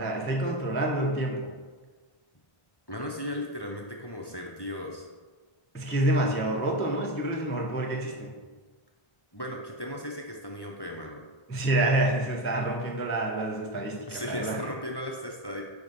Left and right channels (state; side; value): late; right; 1.1 ms